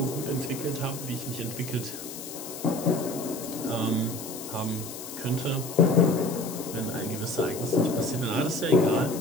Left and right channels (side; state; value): left; noise; hiss, 11 dB below the sound